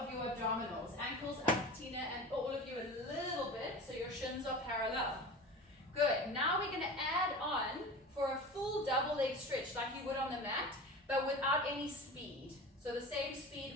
your abdominals. Ankles up, Tina, and all of you a little bit so your shins are parallel. Good. Now we're going to add on for a full double leg stretch like you would on the mat, but without any speed. So the same speed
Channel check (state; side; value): normal; both; correlation 0.34